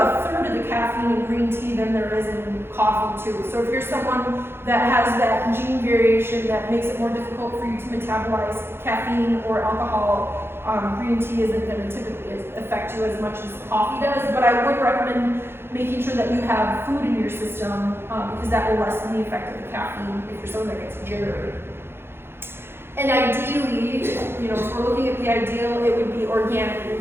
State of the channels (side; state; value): left; late; 0.11 ms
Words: third of the caffeine in green tea than there is in coffee too. So if you're someone that has that gene variation that makes it more difficult for you to metabolize caffeine or alcohol, green tea isn't going to typically affect you as much as coffee does. But I would recommend making sure that you have food in your system because that will lessen the effect of the caffeine if you're someone that gets jittery. And ideally, you know, if we're looking at the ideal, it would be organic